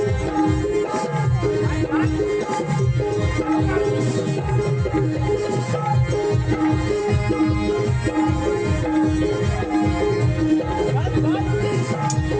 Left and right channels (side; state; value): both; identical; correlation 1.00